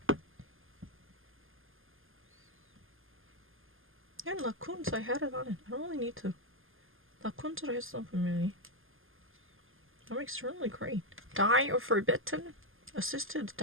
Yeah, Lacoons, I had it on it. I don't really need to. Lacoons를 했어 분명히. That makes really great. Die or forbidden? Assisted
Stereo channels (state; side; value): late; left; 0.59 ms